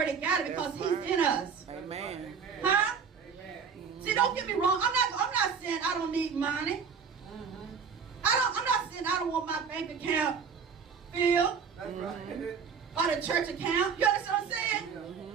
got it because he's in us. Amen. Huh? Amen. See, don't get me wrong. I'm not saying I don't need money. I'm not saying I don't want my bank account filled. That's right. Or the church account. You understand what I'm saying?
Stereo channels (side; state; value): left; quieter; 6.2 dB